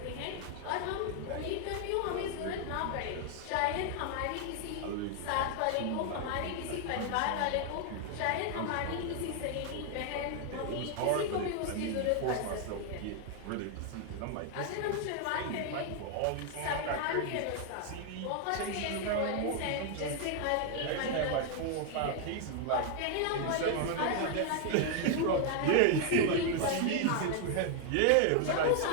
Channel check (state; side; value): different; both; correlation 0.00